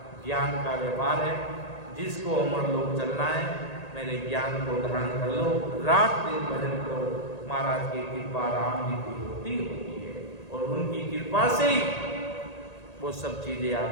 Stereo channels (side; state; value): right; late; 1.8 ms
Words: ज्ञान का व्यापार है। जिसको अमर लोक चलना है मेरे ज्ञान को धारण कर लो, रात दिन भजन करो। महाराज की कृपा राम जी की होती है और उनकी कृपा से ही वो सब चीजें